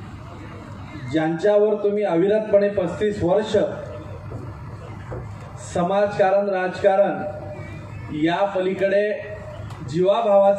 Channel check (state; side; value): identical; both; correlation 1.00